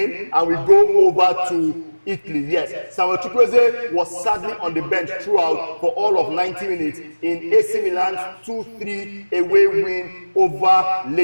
and we go over to Italy. Yes, Samuel Chukwueze was sadly on the bench throughout for all of 90 minutes in AC Milan's 2-3 away win over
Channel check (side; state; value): both; inverted; correlation -1.00